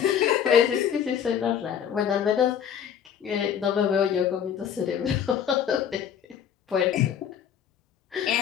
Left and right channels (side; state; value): right; quieter; 8.7 dB